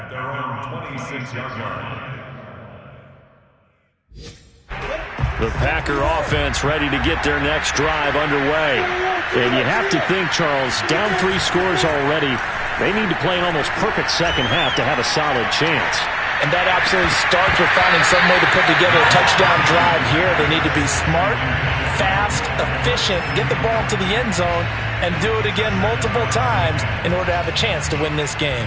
their own 26-yard line. The Packer offense ready to get their next drive underway. And you have to think, Charles, down 3 scores already. They need to play an almost perfect second half to have a solid chance. And that absolutely starts with finding some way to put together a touchdown drive here. They need to be smart, fast, efficient, get the ball to the end zone, and do it again multiple times in order to have a chance to win this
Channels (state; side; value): identical; both; correlation 1.00